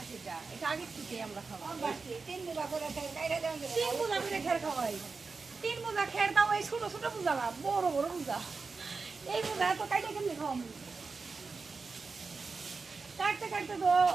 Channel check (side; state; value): left; quieter; 4.4 dB